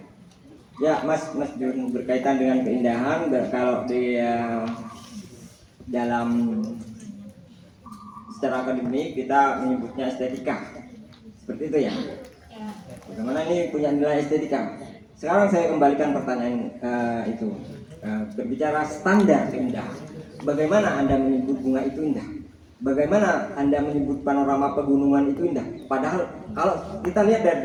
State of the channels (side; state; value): both; identical; correlation 1.00